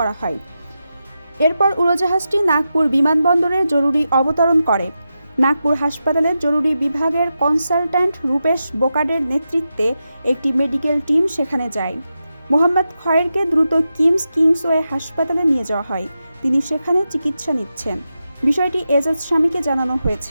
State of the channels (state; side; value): inverted; both; correlation -0.89